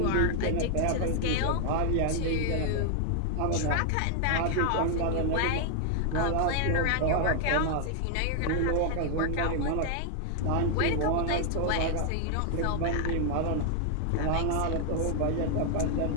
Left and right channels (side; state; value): both; different; correlation 0.00